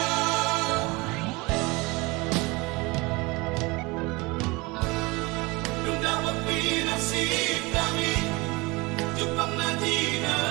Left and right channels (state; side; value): quieter; left; 24.7 dB